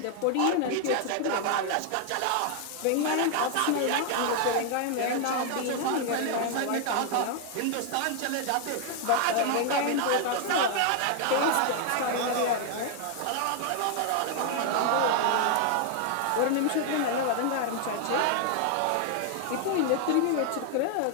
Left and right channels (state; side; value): different; both; correlation 0.00